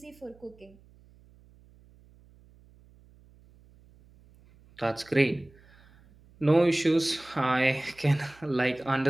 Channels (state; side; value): noise; right; hum, 27 dB below the sound